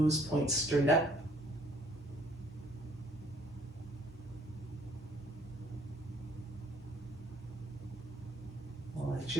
points straight up. Let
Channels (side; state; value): both; normal; correlation 0.61